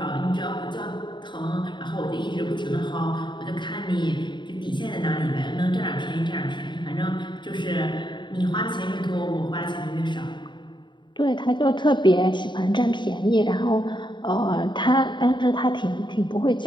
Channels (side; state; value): right; late; 0.22 ms